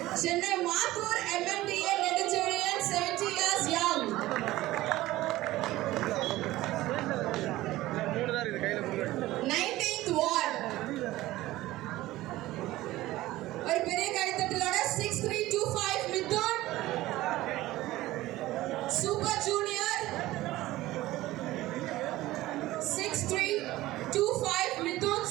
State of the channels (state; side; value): quieter; left; 16.9 dB